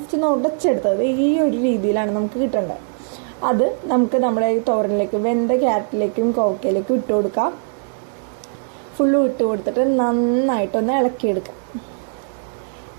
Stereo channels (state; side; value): silent; left; digital silence